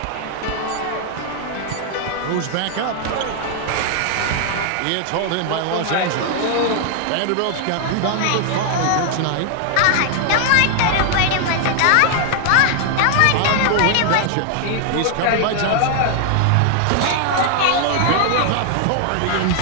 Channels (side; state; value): both; different; correlation 0.00